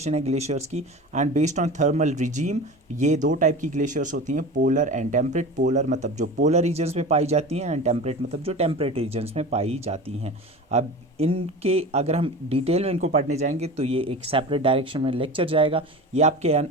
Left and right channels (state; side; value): normal; both; correlation 0.32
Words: है ग्लेशियर्स की, and based on thermal regime ये दो टाइप की ग्लेशियर्स होती हैं, पोलर एंड टेम्परेट। पोलर मतलब जो पोलर रीजन्स में पाई जाती हैं, एंड टेम्परेट मतलब जो टेम्परेट रीजन्स में पाई जाती हैं। अब इनके अगर हम डिटेल में इनको पढ़ने जाएंगे तो ये एक सेपरेट डायरेक्शन में लेक्चर जाएगा, ये आपके